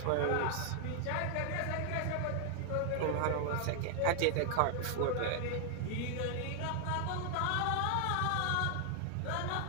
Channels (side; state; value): both; different; correlation 0.00